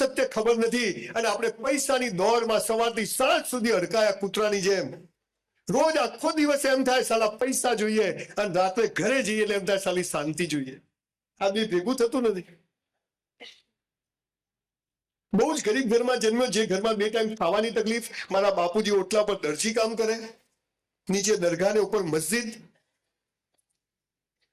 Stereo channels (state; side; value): identical; both; correlation 1.00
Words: ખબર નથી અને આપણે પૈસાની દોડમાં સવારથી સાંજ સુધી અડકાયા કૂતરાની જેમ. રોજ આખો દિવસ એમ થાય સાલા પૈસા જોઈએ, અને રાત્રે ઘરે જઈએ એટલે એમ થાય સાલી શાંતિ જોઈએ. આ બી ભેગું થતું નથી. બહુ જ ગરીબ ઘરમાં જન્મ્યો, જે ઘરમાં 2 ટાઈમ ખાવાની તકલીફ. મારા બાપુજી ઓટલા પર દરજી કામ કરે, નીચે દરગાહ ને ઉપર મસ્જિદ,